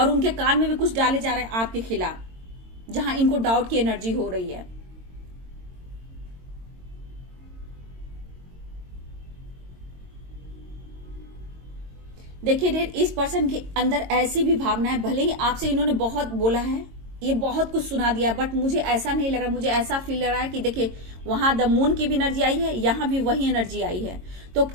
उनके कान में भी कुछ डाले जा रहे हैं आपके खिलाफ, जहां इनको डाउट की एनर्जी हो रही है। देखिए डियर इस पर्सन के अंदर ऐसी भी भावना है, भले ही आपसे इन्होंने बहुत बोला है, ये बहुत कुछ सुना दिया, बट मुझे ऐसा नहीं लग रहा, मुझे ऐसा फील लग रहा है कि देखिए वहां द मून की भी एनर्जी आई है, यहां भी वही एनर्जी आई है। तो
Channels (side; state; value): left; late; 22 ms